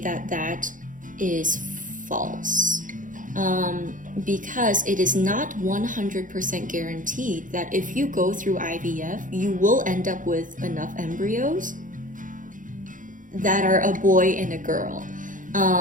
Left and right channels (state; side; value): late; left; 0.38 ms